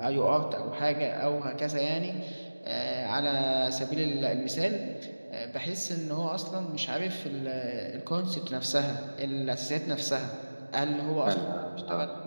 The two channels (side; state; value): both; inverted; correlation -1.00